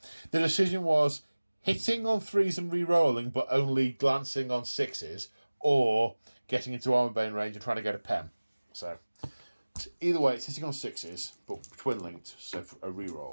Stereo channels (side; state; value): both; inverted; correlation -1.00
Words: The decision was hitting on 3s and re-rolling, but only glancing on 6s, or getting into armor bane range and trying to get a pen. So either way, it's hitting on 6s, but twin linked, so for a